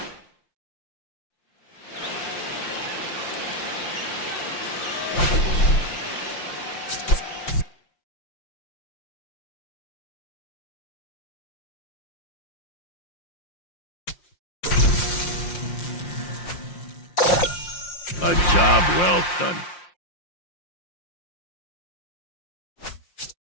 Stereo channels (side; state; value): right; late; 5.7 ms